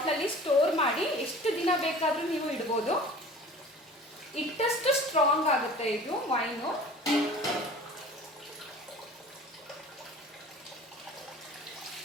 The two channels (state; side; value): normal; both; correlation 0.43